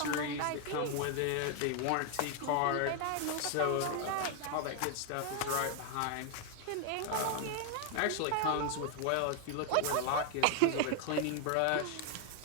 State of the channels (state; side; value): different; both; correlation 0.00